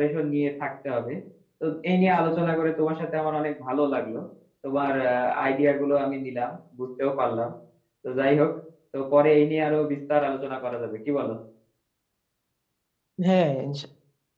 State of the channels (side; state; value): both; identical; correlation 1.00